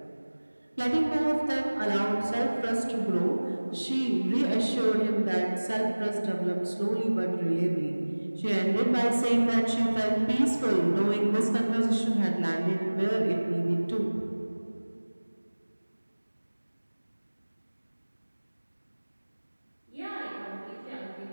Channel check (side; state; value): both; inverted; correlation -1.00